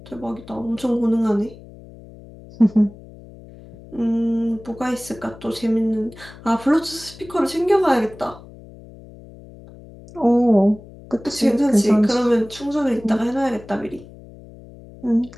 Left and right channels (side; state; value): left; noise; hum, 19 dB below the sound